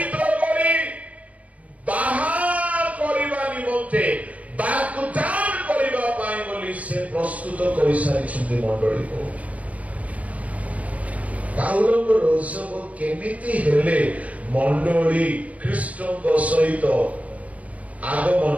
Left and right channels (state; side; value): late; left; 0.069 ms